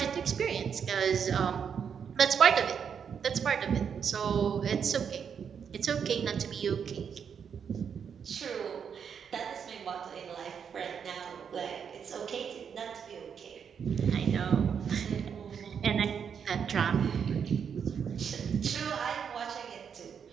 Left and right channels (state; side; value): quieter; left; 7.2 dB